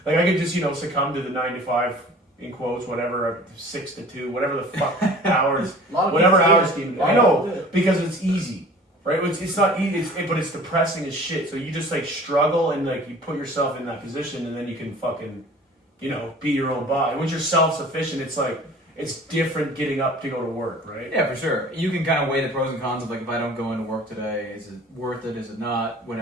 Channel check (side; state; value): both; normal; correlation 0.46